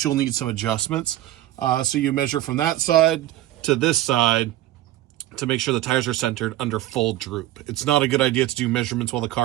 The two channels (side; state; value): left; quieter; 14.6 dB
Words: you'll need some adjustments. So you measure from that side to this side to make sure the tires are centered under full droop. It's not a good idea to do measurements while the